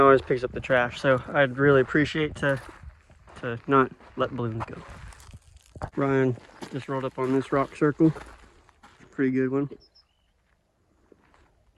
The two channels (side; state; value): both; identical; correlation 1.00